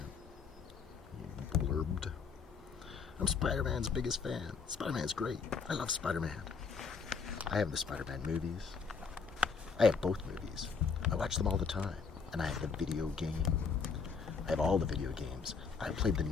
He blurbed. "I'm Spider-Man's biggest fan. Spider-Man's great. I love Spider-Man. I have the Spider-Man movies. I have both movies. I watch them all the time. And I have the video game. I have all the video games. I played the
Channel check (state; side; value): quieter; right; 5.4 dB